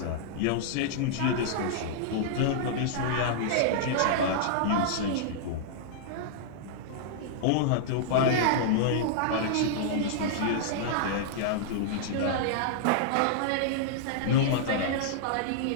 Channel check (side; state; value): both; different; correlation -0.01